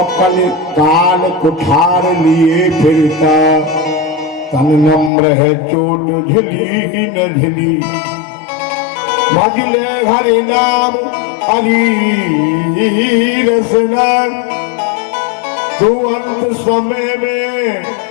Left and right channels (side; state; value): right; drops out; at 5.1 s